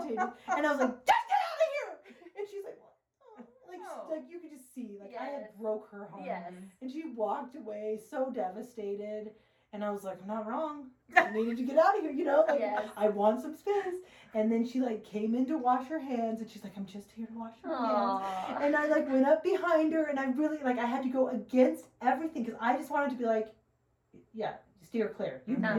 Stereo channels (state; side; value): identical; both; correlation 1.00